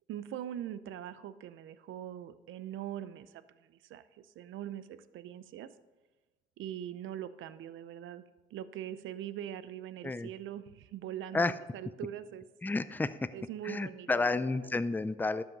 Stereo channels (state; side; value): normal; both; correlation 0.65